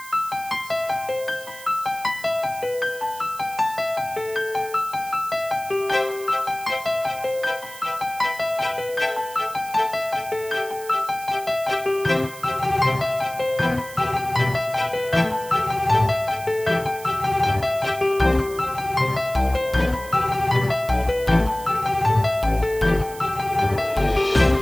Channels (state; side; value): noise; right; hiss, 16 dB below the sound